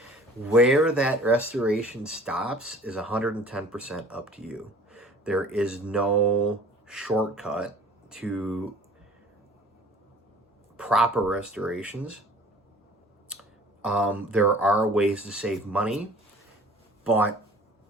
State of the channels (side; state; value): both; normal; correlation 0.48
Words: Where that restoration stops is 110% up to you. There is no shortcut to proper restorations. There are ways to save money, but